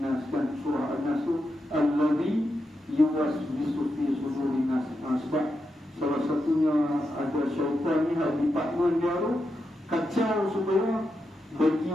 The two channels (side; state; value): both; normal; correlation 0.86